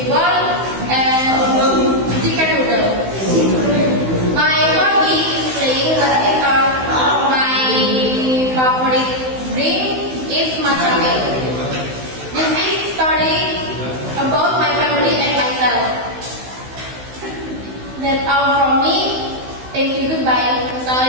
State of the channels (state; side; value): late; left; 16 ms